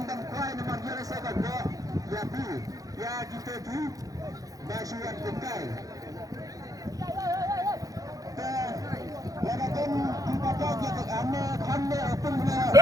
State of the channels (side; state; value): left; late; 0.17 ms